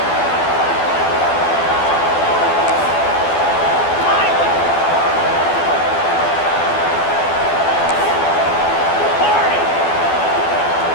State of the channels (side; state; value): right; late; 12 ms